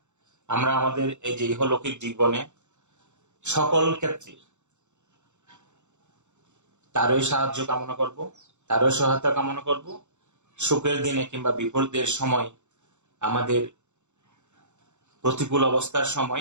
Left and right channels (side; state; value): left; late; 0.84 ms